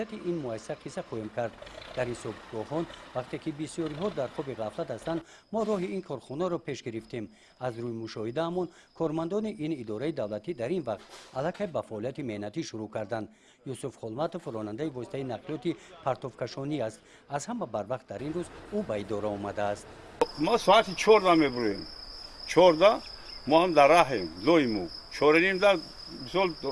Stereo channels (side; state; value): both; identical; correlation 1.00